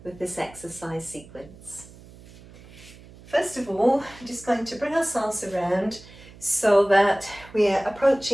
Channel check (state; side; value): noise; right; hum, 21 dB below the sound